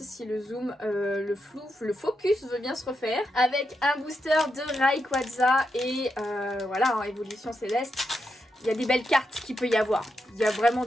si le zoom, le focus veut bien se refaire. Avec un booster de Rayquaza et voilà, en Évolution Céleste. Il y a des belles cartes qu'il peut y avoir. Il y a vraiment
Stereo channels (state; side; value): normal; both; correlation 0.85